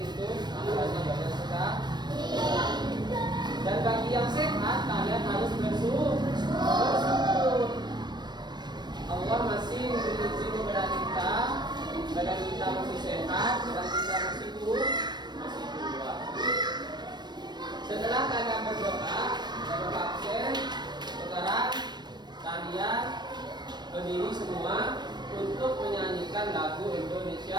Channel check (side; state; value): left; late; 0.21 ms